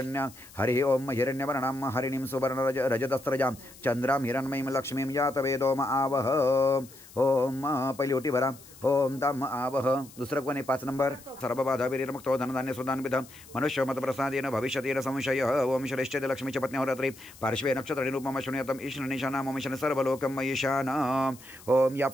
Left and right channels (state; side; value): noise; left; hiss, 21 dB below the sound